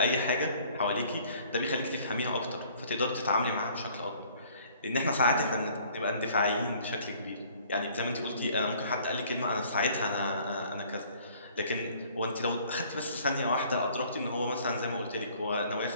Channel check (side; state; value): both; inverted; correlation -0.56